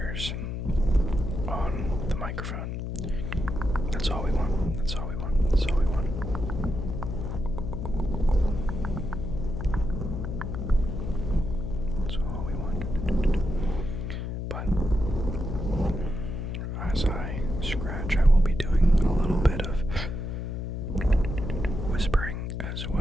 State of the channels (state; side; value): noise; left; hum, 4 dB below the sound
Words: on the microphone. That's all we want. That's all we want. That's all we want. That's all we want. But as I scratch, I will be doing a little bit of whispering as